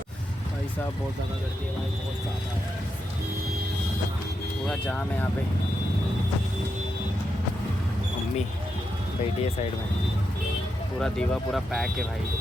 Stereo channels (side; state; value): both; normal; correlation 0.85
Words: भाई साहब, बहुत ज़्यादा करती है भाई, बहुत ज़्यादा है। पूरा जाम है यहाँ पे। मम्मी बैठी है साइड में, पूरा दीवा पूरा पैक है भाई।